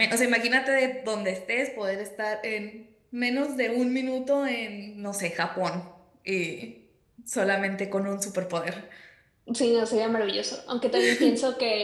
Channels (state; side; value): identical; both; correlation 1.00